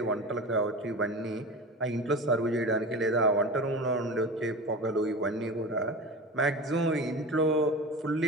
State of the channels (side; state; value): both; normal; correlation 0.30